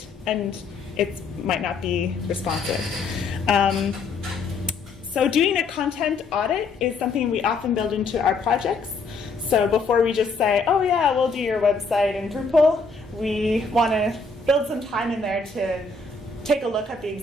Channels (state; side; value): quieter; right; 4.1 dB